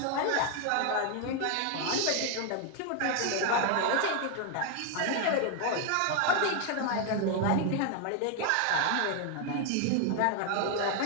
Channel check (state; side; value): different; both; correlation 0.00